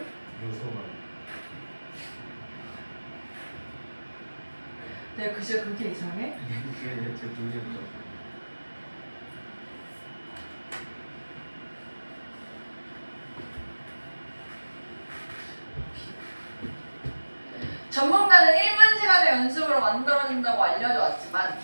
요소만. 내가 글씨가 그렇게 이상해? 이게 제 눈이었죠. 전문가는 1만 시간의 연습으로 만들어진다고 알려져 왔지만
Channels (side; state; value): both; inverted; correlation -1.00